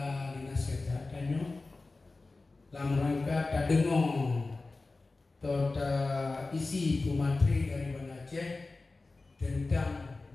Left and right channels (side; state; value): right; quieter; 3.5 dB